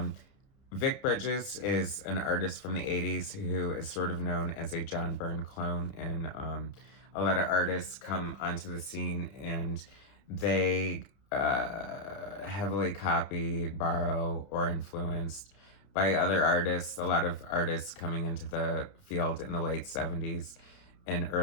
Vic Bridges is an artist from the 80s who is sort of known as a John Byrne clone, and a lot of artists come onto the scene and they heavily copy, borrow, or influenced by other artists. A lot of artists coming into the field in the late 70s and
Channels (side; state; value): right; late; 30 ms